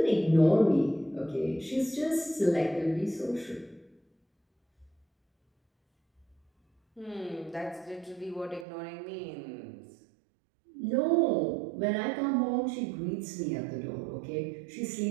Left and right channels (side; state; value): left; drops out; at 8.7 s